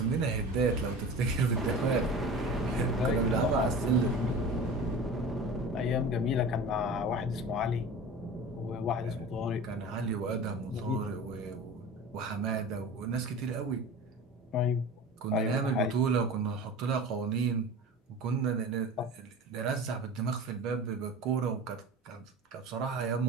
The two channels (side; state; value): both; normal; correlation 0.35